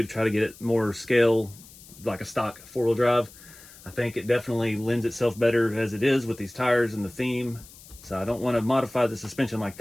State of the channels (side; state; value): left; noise; hiss, 21 dB below the sound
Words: to try to get it more scale, like a stock four-wheel drive. I think it definitely lends itself better as it is with these tires and the theme. So I don't want to modify the suspension like